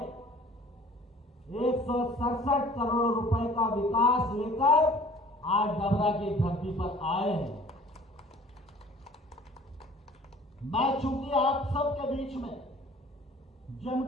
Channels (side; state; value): both; normal; correlation 0.50